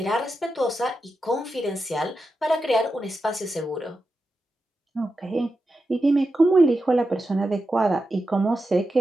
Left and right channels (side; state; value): both; normal; correlation 0.89